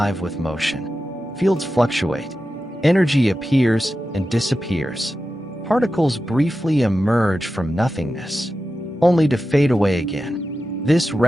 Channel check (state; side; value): normal; both; correlation 0.92